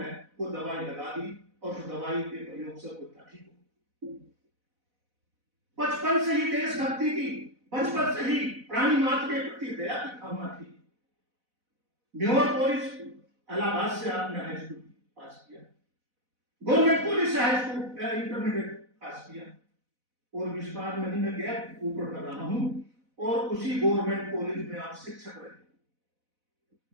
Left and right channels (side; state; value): left; late; 4.0 ms